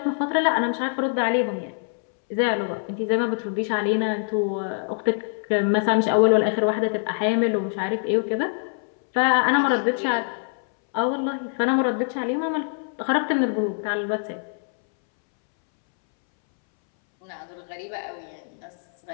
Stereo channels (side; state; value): right; silent; 62 dB below the other